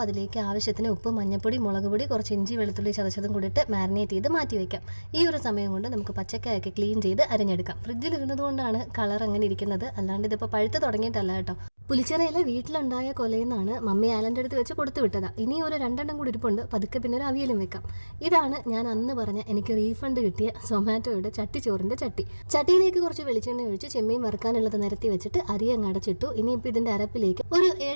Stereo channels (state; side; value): inverted; both; correlation -1.00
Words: അതിലേക്ക് ആവശ്യത്തിന് ഉപ്പ്, മഞ്ഞപ്പൊടി, മുളക് പൊടി, കുറച്ച് ഇഞ്ചി വെളുത്തുള്ളി ചതച്ചതും കൂടിയിട്ട് മാരിനേറ്റ് ചെയ്ത് മാറ്റി വെക്കാം. ഈ ഒരു സമയം കൊണ്ട് നമുക്ക് പച്ചക്കായൊക്കെ ക്ലീൻ ചെയ്ത് അരിഞ്ഞെടുക്കാം. ഫ്രിഡ്ജിൽ ഇരുന്നത് കൊണ്ടാണ് കളർ അങ്ങനെ ഇരിക്കുന്നത്, അല്ലാണ്ട് ഇതിപ്പോൾ പഴുത്ത് തുടങ്ങിയിട്ടല്ല കേട്ടോ. പുളിച്ചിറയിലെ വീട്ടിലുണ്ടായ കൊലയെന്നാണ് മമ്മി ആലൻ്റെ അടുത്ത് വെച്ച് കൊടുത്തു വിട്ടതാ. ഇനി ഒരു 2 കൂടി ഇരിപ്പുണ്ട്. പതുക്കെ പിന്നെ ഒരു അവിയലും വെക്കാം. ഇതാണ് ഞാൻ അന്ന് പറഞ്ഞ എനിക്ക് റീഫണ്ട് കിട്ടിയ സൊമാറ്റോയുടെ ചട്ടിച്ചോറിൻ്റെ ചട്ടി. ചട്ടിയിലേക്ക് കുറച്ച് വെളിച്ചെണ്ണ ഒഴിച്ച് ചെമ്മീൻ വറുക്കാനുള്ളത് നിരത്തി വെച്ചിട്ട് അരി അങ്ങ് അടച്ചിട്ടു. ഇനിയിപ്പോൾ ഇതിൻ്റെ അരപ്പിലേക്ക് ഒരു